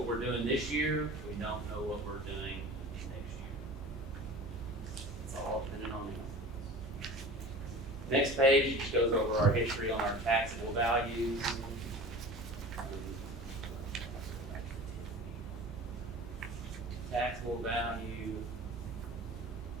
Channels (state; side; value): normal; both; correlation 0.38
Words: we're doing this year, we don't know what we're doing next year. It's all depending on them. Next page just goes over our history on our taxable values. Taxable value